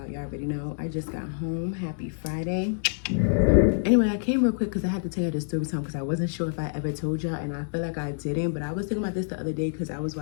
Y'all already know. I just got home. Happy Friday. Anyway, I came real quick because I had to tell you this story time because I wasn't sure if I ever told y'all, and I feel like I didn't, but I was thinking about this the other day because I was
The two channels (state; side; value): silent; right; 60 dB below the other